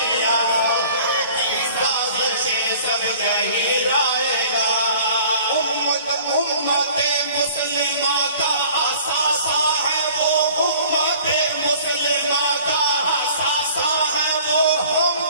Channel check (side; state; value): both; inverted; correlation -0.50